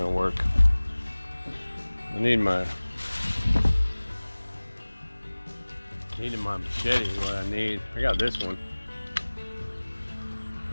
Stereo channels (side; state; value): both; inverted; correlation -1.00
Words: work. I need my machete. What I need, I got this one.